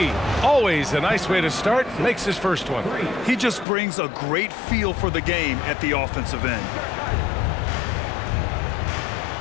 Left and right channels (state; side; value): drops out; right; at 3.7 s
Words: Always a nice way to start. Makes his first one. He just brings a great feel for the game at the offensive end.